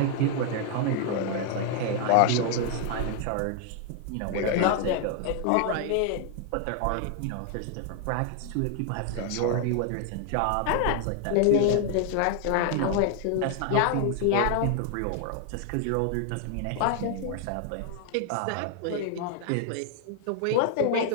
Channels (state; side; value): different; both; correlation 0.00